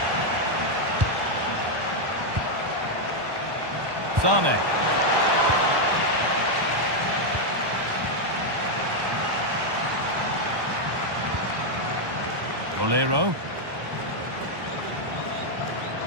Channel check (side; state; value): left; late; 1.1 ms